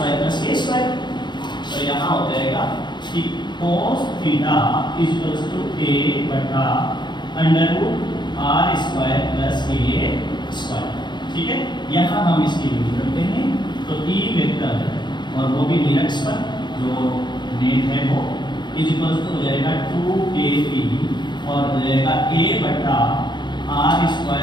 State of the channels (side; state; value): right; late; 0.22 ms